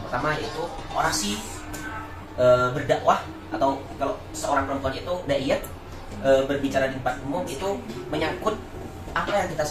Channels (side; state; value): both; identical; correlation 1.00